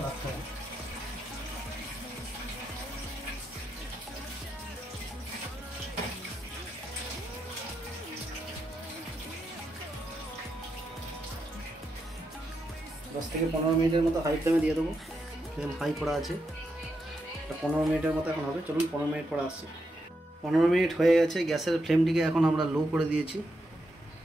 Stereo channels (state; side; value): normal; both; correlation 0.83